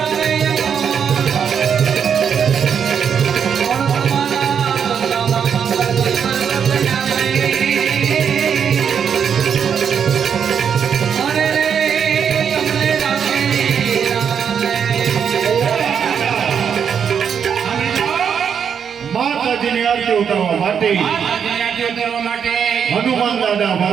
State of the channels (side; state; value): left; quieter; 7.5 dB